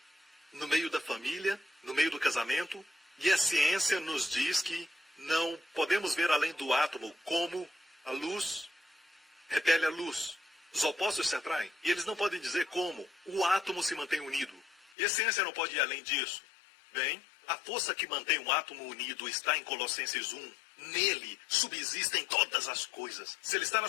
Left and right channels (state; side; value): drops out; right; at 15.0 s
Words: no meio da família, no meio do casamento. E a ciência nos diz que não podemos ver além do átomo, como a luz repele a luz. Os opostos se atraem. E eles não podem dizer como o átomo se mantém unido. E a ciência não pode ir além disso. Bem, a força que mantém um átomo unido está em Colossenses 1. Nele subsistem todas as coisas. Se ele está na